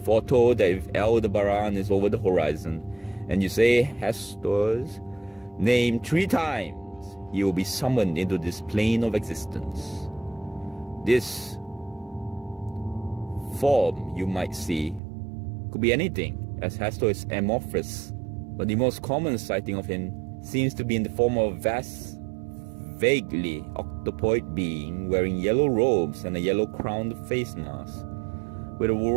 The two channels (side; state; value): left; drops out; at 15.0 s